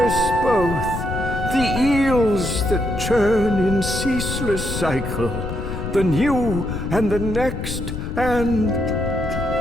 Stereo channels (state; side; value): noise; left; rumble, 5 dB below the sound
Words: both, the eels that churn in ceaseless cycle, the new and the next, and...